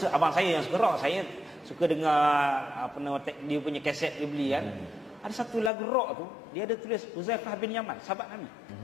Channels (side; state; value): right; drops out; at 5.7 s